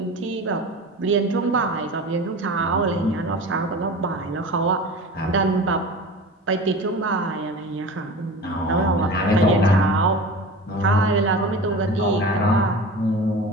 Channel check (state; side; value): normal; both; correlation 0.34